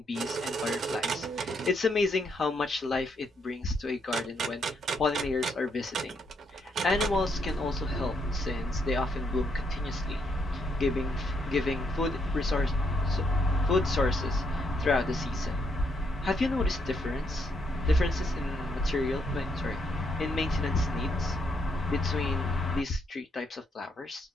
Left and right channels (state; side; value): normal; both; correlation 0.75